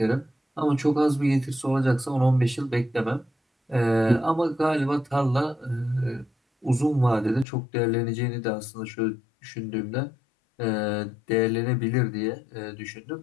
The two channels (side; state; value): right; drops out; at 7.5 s